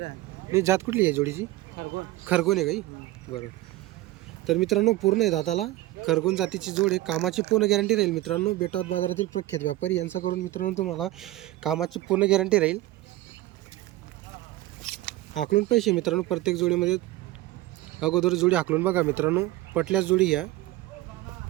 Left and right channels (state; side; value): quieter; left; 17.0 dB